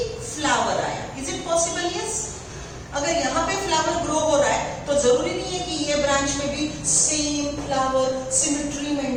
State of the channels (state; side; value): identical; both; correlation 1.00